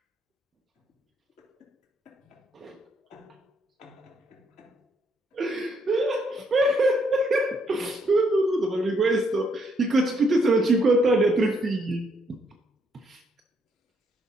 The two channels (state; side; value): normal; both; correlation 0.73